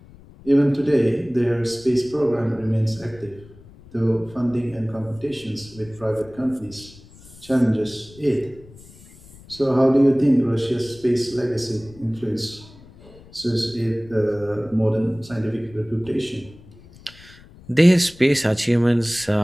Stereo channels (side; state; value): left; noise; rumble, 22 dB below the sound